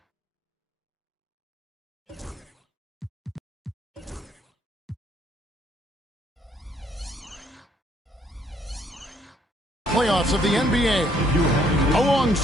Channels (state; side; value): normal; both; correlation 0.67